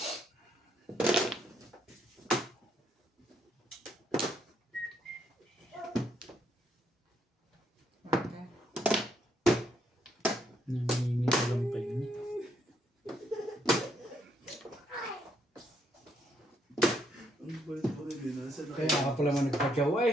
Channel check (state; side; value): normal; both; correlation 0.73